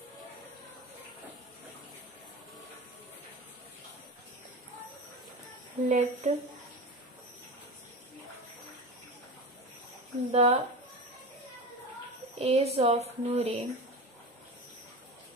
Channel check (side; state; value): both; normal; correlation 0.26